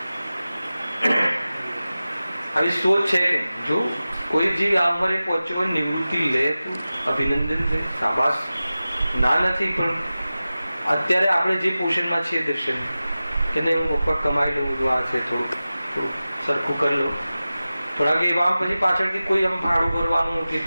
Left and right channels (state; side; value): inverted; both; correlation -0.96